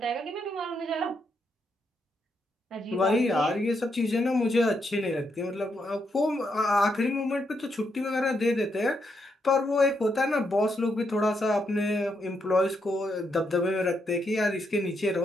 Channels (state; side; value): normal; both; correlation 0.79